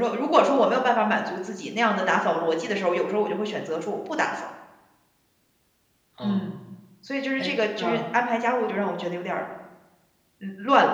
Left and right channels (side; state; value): both; identical; correlation 1.00